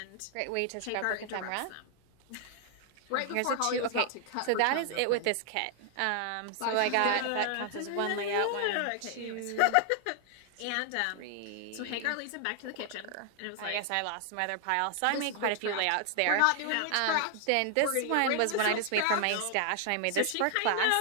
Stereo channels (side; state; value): both; different; correlation 0.00